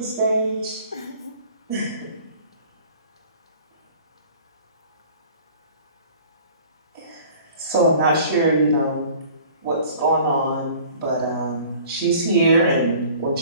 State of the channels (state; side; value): inverted; both; correlation -0.49